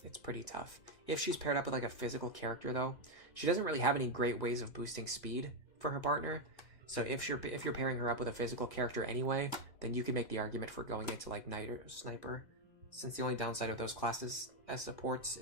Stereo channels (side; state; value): right; late; 2.0 ms